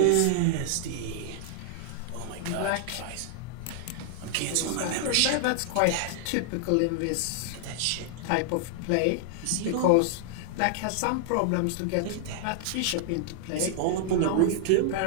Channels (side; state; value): both; different; correlation -0.01